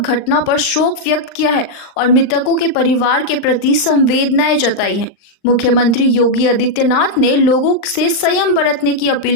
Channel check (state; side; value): late; right; 39 ms